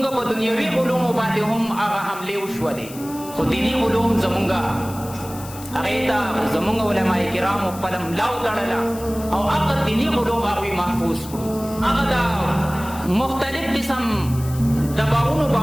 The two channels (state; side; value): noise; left; hiss, 16 dB below the sound